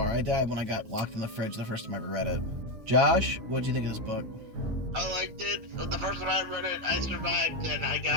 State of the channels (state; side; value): late; left; 8.8 ms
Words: I died when I got locked in the fridge the first time I ever read it. Josh, what'd you think of this book? I liked it. The first time I read it, I survived, and I